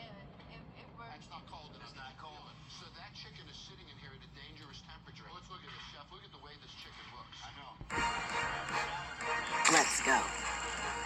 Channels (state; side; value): identical; both; correlation 1.00